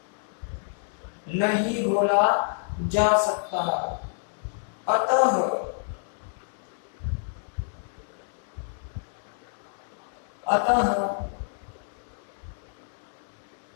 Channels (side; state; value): right; silent; digital silence